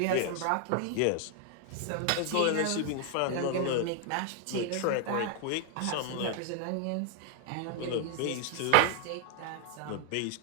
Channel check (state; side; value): different; both; correlation 0.00